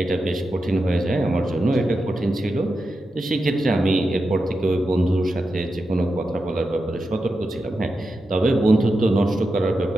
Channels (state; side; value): normal; both; correlation 0.89